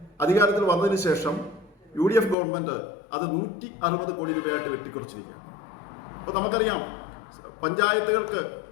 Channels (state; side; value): drops out; right; at 2.4 s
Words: അധികാരത്തിൽ വന്നതിന് ശേഷം UDF ഗവൺമെൻറ് അത് 160 കോടി രൂപയായിട്ട് വെട്ടിക്കുറച്ചിരിക്കുകയാണ്. അപ്പോൾ നമുക്കറിയാം, പഞ്ചായത്തുകൾക്ക്